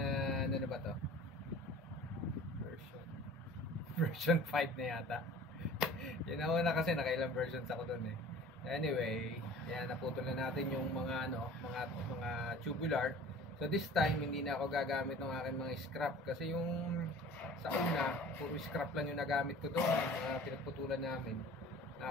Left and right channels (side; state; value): right; noise; rumble, 26 dB below the sound